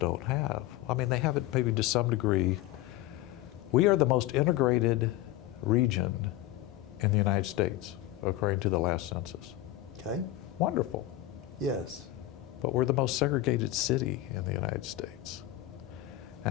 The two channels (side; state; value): right; quieter; 14.8 dB